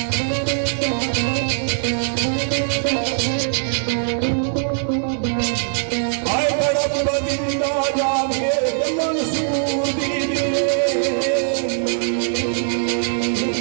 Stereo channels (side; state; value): left; silent; 65 dB below the other